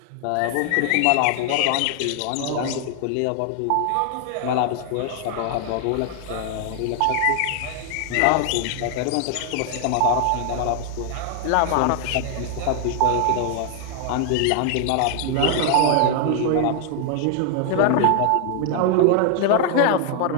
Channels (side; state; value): both; different; correlation 0.00